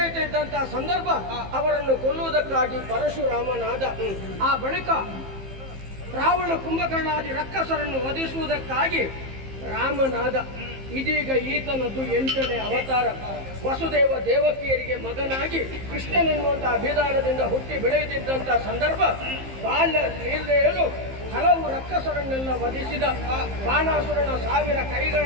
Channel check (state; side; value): late; left; 15 ms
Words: ಸಂದರ್ಭ ಅವರನ್ನು ಕೊಲ್ಲುವುದಕ್ಕಾಗಿ ಪರಶುರಾಮನಾದ. ಆ ಬಳಿಕ ರಾವಣ ಕುಂಭಕರ್ಣಾದಿ ರಕ್ಕಸರನ್ನು ವಧಿಸುವುದಕ್ಕಾಗಿ ರಾಮನಾದ. ಇದೀಗ ಈತನದ್ದು 8ನೇ ಅವತಾರ. ವಸುದೇವ ದೇವಕಿಯರಿಗೆ ಮಗನಾಗಿ ಕೃಷ್ಣನೆನ್ನುವಂತಹ ಅಭಿಧಾನದಿಂದ ಹುಟ್ಟಿ ಬೆಳೆಯುತ್ತಿದ್ದಂತಹ ಸಂದರ್ಭ ಬಾಲ್ಯ ಲೀಲೆಯಲು ಹಲವು ರಕ್ಕಸರನ್ನೆಲ್ಲ ವಧಿಸಿದ. ಬಾಣಾಸುರನ 1000